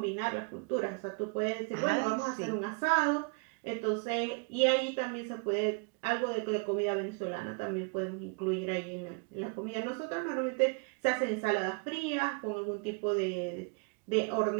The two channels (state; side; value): quieter; left; 34.0 dB